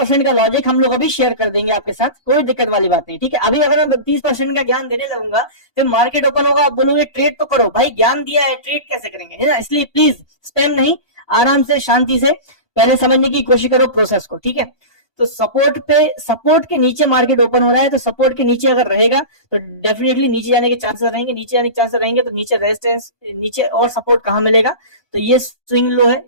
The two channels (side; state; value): right; late; 1.2 ms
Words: का लॉजिक हम लोग अभी शेयर कर देंगे आपके साथ, कोई दिक्कत वाली बात नहीं, ठीक है। अभी अगर मैं 30% का ज्ञान देने लगूंगा फिर मार्केट ओपन होगा, आप बोलोगे ट्रेड तो करो। भाई ज्ञान दिया है, ट्रेड कैसे करेंगे, है ना। इसलिए प्लीज स्पैम नहीं, आराम से शांति से पहले समझने की कोशिश करो प्रोसेस को, ठीक है। तो सपोर्ट के नीचे मार्केट ओपन हो रहा है, तो सपोर्ट के नीचे अगर रहेगा तो डेफिनेटली नीचे जाने के चांसेस रहेंगे। नीचे जाने के चांसेस रहेंगे तो नीचे रेजिस्टेंस, नीचे और सपोर्ट कहां मिलेगा, तो ये स्विंग लो है,